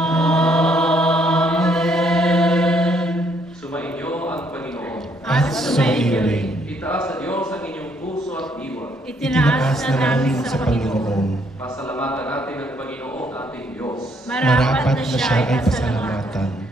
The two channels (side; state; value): both; normal; correlation 0.70